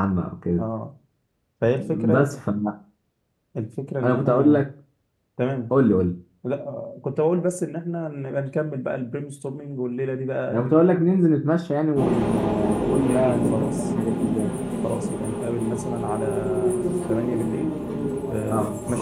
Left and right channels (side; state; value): both; identical; correlation 1.00